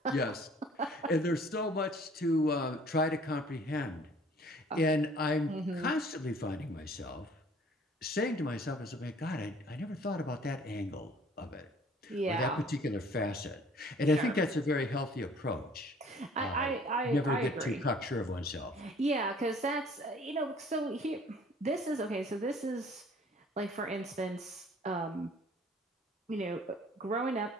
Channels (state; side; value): normal; both; correlation 0.54